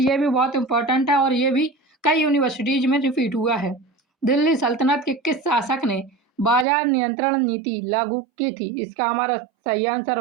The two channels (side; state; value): left; drops out; at 6.7 s